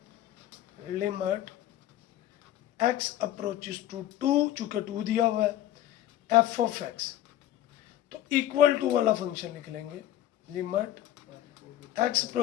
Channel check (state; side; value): quieter; right; 12.9 dB